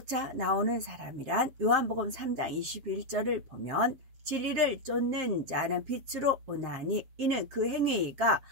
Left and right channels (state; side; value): late; left; 7.7 ms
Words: 나오는 사람이란 요한복음 3장 21절을 보면 진리를 쫓는 자는 빛으로 오나니 이는 그 행위가